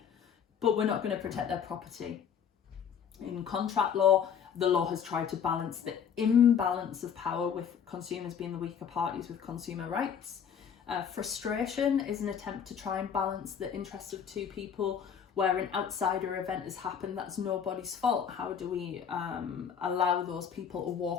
but we're not going to protect their property. In contract law, the law has tried to balance the imbalance of power with consumers being the weaker parties with consumer rights. Frustration is an attempt to try and balance the interests of two people where an outsider event has happened that's nobody's fault. How do we allow those people to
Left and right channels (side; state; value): right; quieter; 7.7 dB